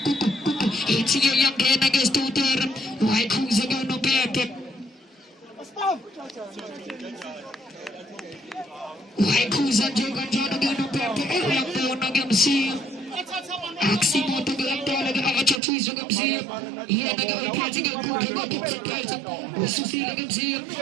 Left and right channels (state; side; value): drops out; left; at 15.6 s